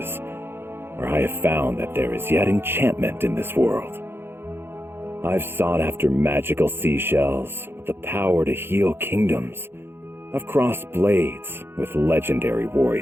where I have found that there is yet enchantment in this world. I've sought after magical seashells with the power to heal kingdoms. I've crossed blades with legendary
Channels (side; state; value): left; late; 0.11 ms